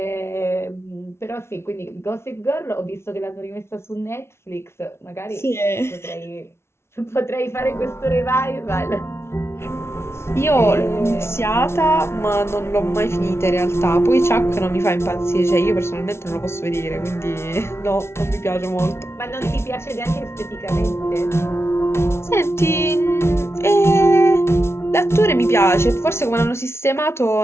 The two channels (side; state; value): right; late; 0.12 ms